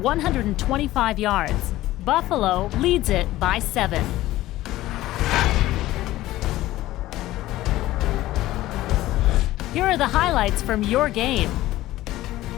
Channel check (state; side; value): quieter; right; 16.0 dB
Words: yards. Buffalo leads it by 7. Here are the highlights from your game.